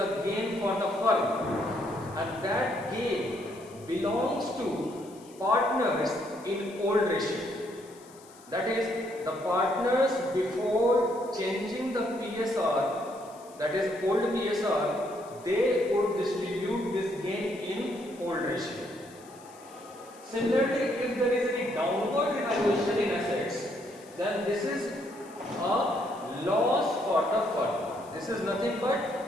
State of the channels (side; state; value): left; noise; hiss, 24 dB below the sound